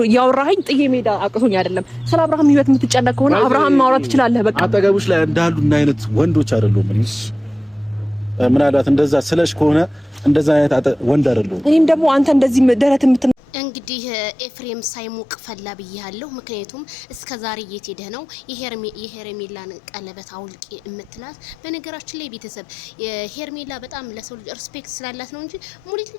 ያወራኸኝ ጥዬ ሜዳ አቅቶኝ አይደለም። ስለ አብርሃም ህይወት የምትጨነቅ ከሆነ አብርሃም ማውራት ትችላለህ። በቃ አጠገቡሽ ላይ እንዳሉ እና አይነት ወንዶች አይደሉም። ምናልባት እንደዛ ስለሽ ከሆነ እንደዛ አይነት ወንድ አይደሉም። እኔም ደግሞ አንተ እንደዚህ ደረት እንግዲህ ኤፍሬም ሳይሞቅ ፈላ ብያለሁ። ምክንያቱም እስከዛሬ የት ሄደ ነው የሄርሜላን ቀለበት አውልቂ እምትላት። በነገራችን ላይ ቤተሰብ ሄርሜላ በጣም ለሰው ልጅ ሪስፔክት ስላላት ነው እንጂ ሙሊት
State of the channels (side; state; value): both; normal; correlation 0.97